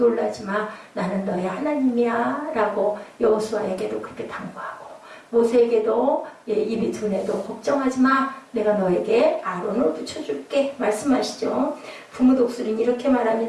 마. 나는 너의 하나님이야. 라고 여호수아에게도 그렇게 당부하고 모세에게도 입이 둔해도 걱정하지 마. 내가 너에게 아론을 붙여줄게. 말씀하시죠. 부모 독수리는 이렇게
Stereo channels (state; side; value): identical; both; correlation 1.00